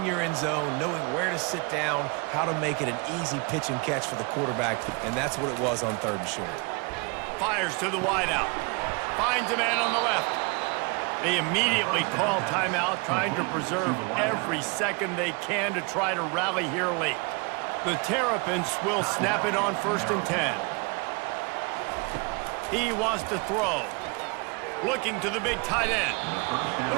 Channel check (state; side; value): quieter; left; 30.1 dB